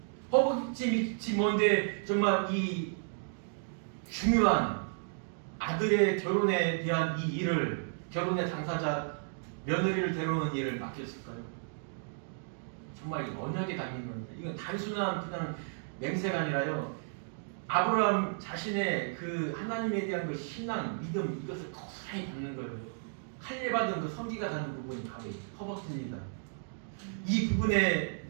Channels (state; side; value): silent; left; digital silence